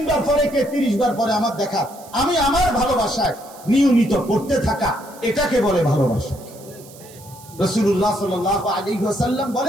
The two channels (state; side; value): noise; right; hiss, 21 dB below the sound